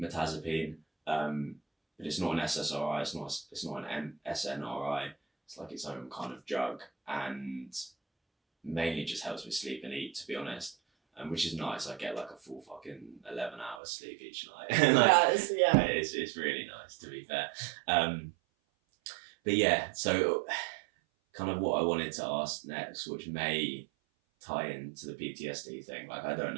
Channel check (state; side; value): drops out; left; at 13.8 s